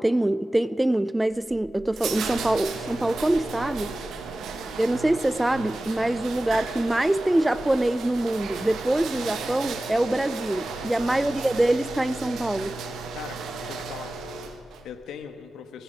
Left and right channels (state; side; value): normal; both; correlation 0.96